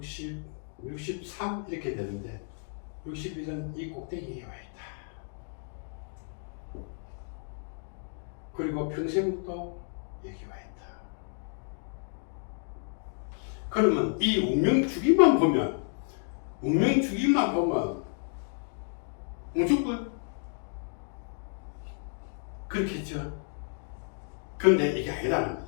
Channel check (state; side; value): silent; right; 57 dB below the other